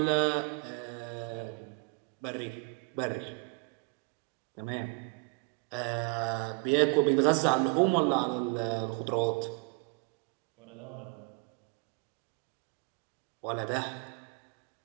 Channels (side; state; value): left; quieter; 30.5 dB